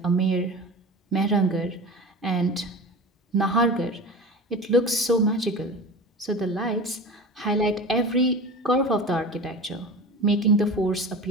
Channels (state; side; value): normal; both; correlation 0.33